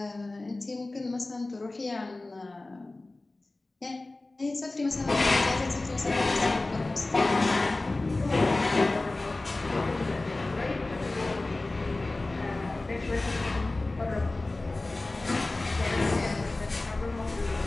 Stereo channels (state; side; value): quieter; right; 3.0 dB